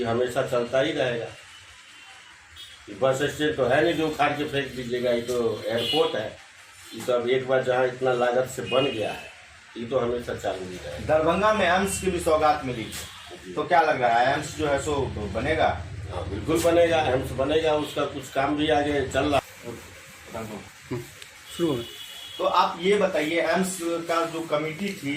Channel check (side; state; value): both; identical; correlation 1.00